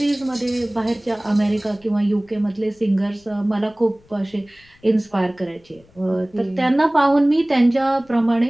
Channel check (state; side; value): noise; left; rumble, 30 dB below the sound